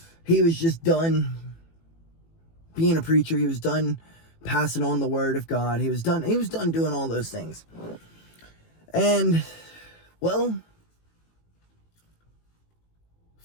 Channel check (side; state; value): right; late; 18 ms